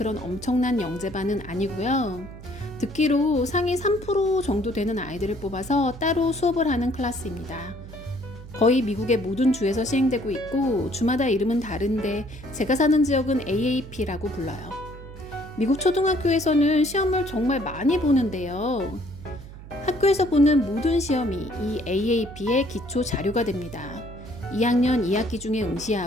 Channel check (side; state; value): right; noise; hum, 15 dB below the sound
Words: 엄청난 영재반은 아니고요. 듣기로 상위 3% 정도 되는 아이들을 뽑아서 따로 수업을 하는 클래스입니다. 거의 미국의 모든 주에서 시행되고 있고 주마다 이름은 다른데 제가 사는 지역은 AAP라고 불러요. 미국 초등학교에서는 시험을 정말 많이 보는데요. 학교에서 보는 모든 시험이 이 AAP의 기초 자료가 됩니다. 2학년 2학기 중에